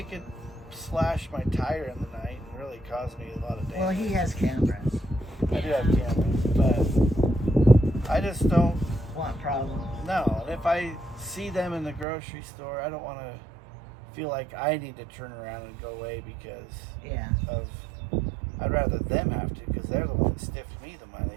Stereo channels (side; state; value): left; drops out; at 12.1 s